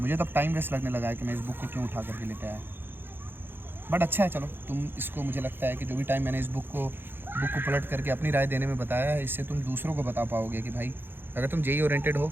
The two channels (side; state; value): left; late; 0.10 ms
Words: तब टाइम वेस्ट लगने लगा है कि मैं इस बुक को क्यों उठा करके लेते आया, बट अच्छा है। चलो, तुम इसको, मुझे लगता है कि जो भी टाइम मैंने इस बुक को पलट करके अपनी राय देने में बताया है, इससे तुम दूसरों को बता पाओगे कि भाई अगर तुम जेई ओरिएंटेड